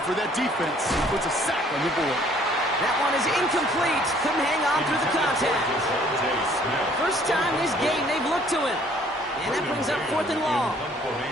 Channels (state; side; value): normal; both; correlation 0.59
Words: For that defense, he puts a sack on the board. That one is incomplete. Couldn't hang on through the contact. First time this game they've looked to him. And that brings up 4th and long.